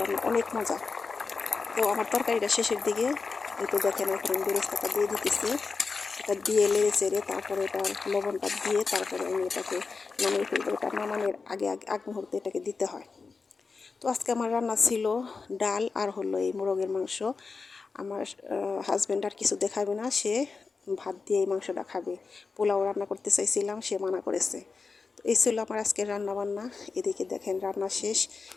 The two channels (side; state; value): right; quieter; 4.6 dB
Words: অনেক মজা। তো আমার তরকারিটা শেষের দিকে এই তো দেখেন এখন আমি বেরেস্তাটা দিয়ে দিতেছি। এটা দিয়ে লেড়ে চেড়ে তারপরে এটার লবণটা দিয়ে তারপরে আমি এটাকে নামিয়ে ফেলবো। এটা নামানোর আগ মুহূর্তে এটাকে দিতে হয়। তো আজকে আমার রান্না ছিল ডাল আর হলো এই মোরগের মাংস। আমার হাজব্যান্ড আর কিছু দেখাবে না, সে ভাত দিয়ে এই মাংসটা খাবে। পোলাও রান্না করতে চাইছিলাম, সে মানা করেছে। তো এই ছিল আমার আজকের রান্না বান্না। এদিকে দেখেন রান্না শেষ,